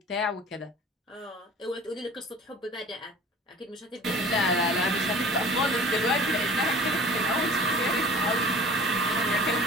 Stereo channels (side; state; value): both; normal; correlation 0.45